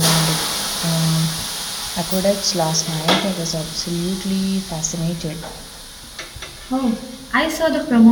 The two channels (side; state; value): both; identical; correlation 1.00